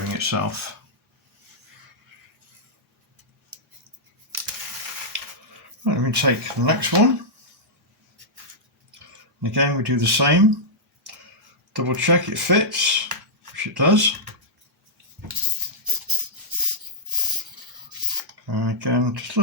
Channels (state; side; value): normal; both; correlation -0.10